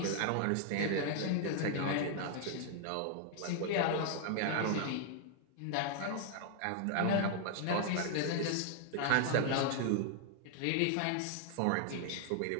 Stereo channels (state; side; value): different; both; correlation 0.00